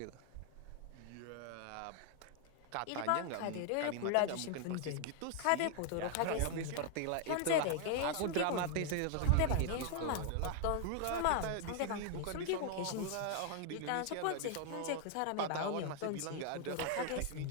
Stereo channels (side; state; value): both; different; correlation 0.00